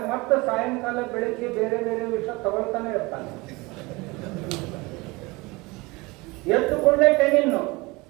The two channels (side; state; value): left; quieter; 24.0 dB